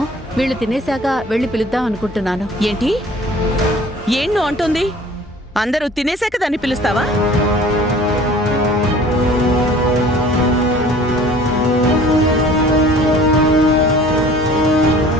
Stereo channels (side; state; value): both; normal; correlation 0.49